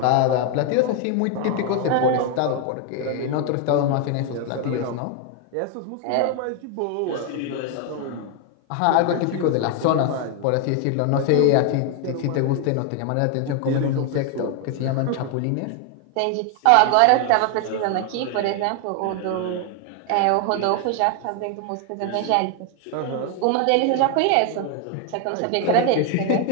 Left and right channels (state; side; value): different; both; correlation 0.00